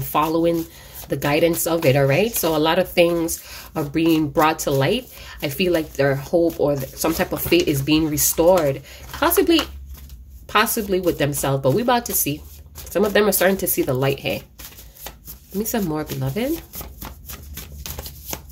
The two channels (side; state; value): both; identical; correlation 1.00